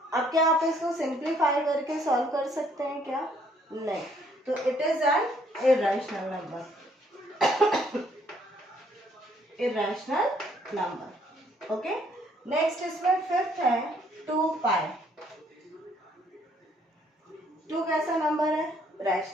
अब क्या आप इसको सिंप्लीफाई करके सॉल्व कर सकते हैं क्या, नहीं, तो it is an irrational number, irrational number. Okay, next इसमें फिफ्थ है 2π। 2 कैसा नंबर है,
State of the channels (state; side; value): normal; both; correlation 0.65